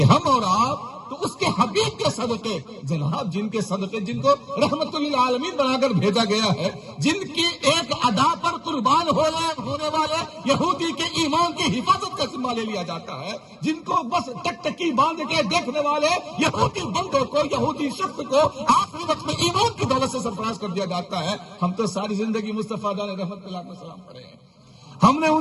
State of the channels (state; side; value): identical; both; correlation 1.00